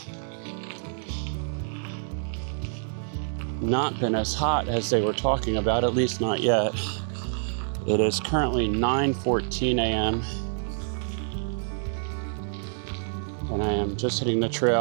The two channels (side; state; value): left; silent; digital silence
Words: not been as hot as they were talking about, at least not yet. It is currently 9:14 a.m. and I am just hitting the